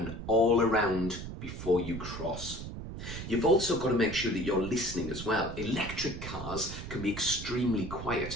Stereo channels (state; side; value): noise; right; rumble, 8 dB below the sound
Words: all around before you cross. You've also got to make sure that you're listening as well. Electric cars can be extremely